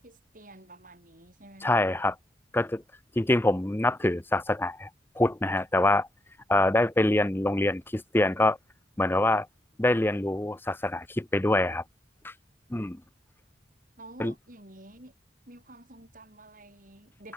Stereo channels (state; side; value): normal; both; correlation 0.79